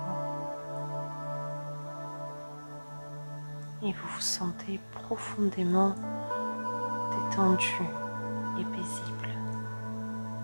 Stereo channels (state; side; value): inverted; both; correlation -1.00